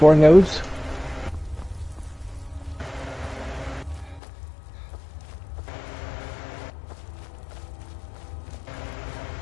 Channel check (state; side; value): drops out; right; at 4.2 s